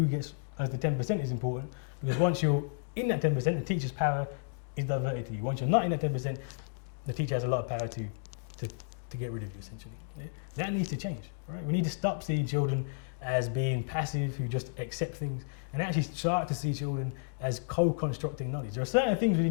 gets as the 10% is important, because once you're in that 10%, the teacher's power is diverted to you. Once you're not in that 10%, the teacher has a lot of power to get rid of you, essentially. Yeah? That needs to change, right? We need to stop seeing children as being passive, who just accept things, and actually start to see children as co-constructing knowledge. There are certain things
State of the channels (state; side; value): silent; right; digital silence